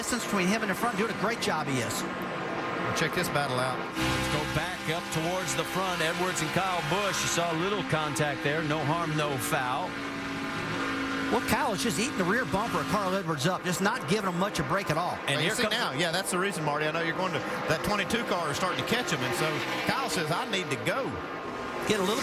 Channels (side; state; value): both; identical; correlation 1.00